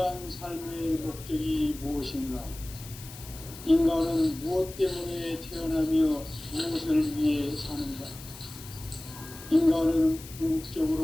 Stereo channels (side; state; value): left; noise; hiss, 15 dB below the sound